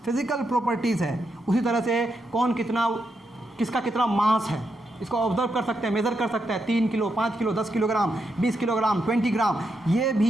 फिजिकल प्रॉपर्टीज़ है। उसी तरह से कौन कितना, किसका कितना मास है, इसको ऑब्जर्व कर सकते हैं, मेज़र कर सकते हैं, 3 किलो, 5 किलो, 10 किलोग्राम, 20 किलोग्राम, 20 ग्राम, ये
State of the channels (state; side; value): normal; both; correlation 0.83